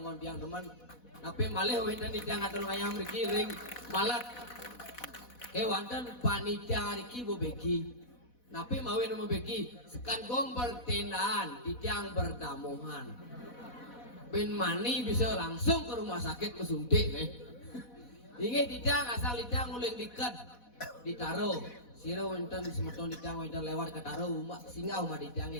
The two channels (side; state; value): right; late; 4.1 ms